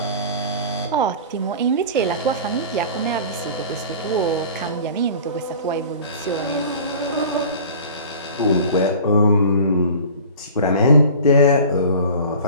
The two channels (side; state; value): both; inverted; correlation -0.41